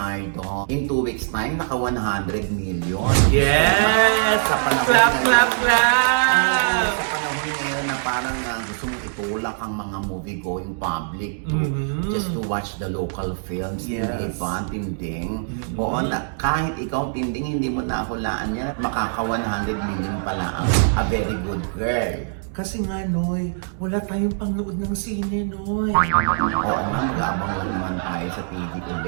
In 2 weeks time, naka 100 million. Yes! Sa panahon Clap, ngayon- clap, clap! Sa panahon ngayon na parang gusto mong itulak ang mga movie-going public to Mhm. just to watch the local films. Yes. Hindi ba, Tinding? Oo, kahit ikaw, Tinding, hindi mo nahulaan yan. Makaka 100 million pala ang a very good girl. Kasi nga, Noy, wala tayong pangnood ng sine, Noy. Oo nga, mag-aabang lang naman tayo sa TV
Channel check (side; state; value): left; silent; digital silence